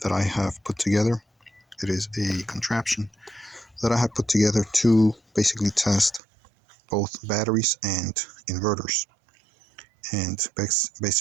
that I have put together. It is a contraption that I have put together to basically test both batteries and inverters. And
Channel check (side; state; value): left; drops out; at 6.2 s